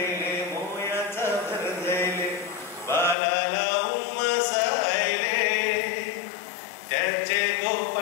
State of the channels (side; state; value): right; drops out; at 3.2 s